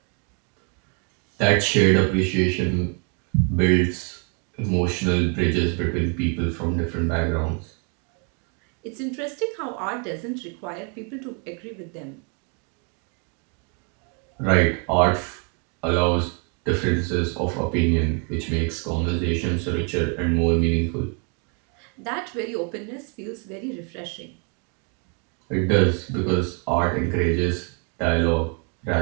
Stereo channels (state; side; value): quieter; left; 37.7 dB